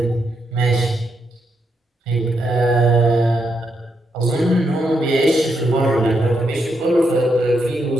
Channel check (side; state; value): both; normal; correlation 0.80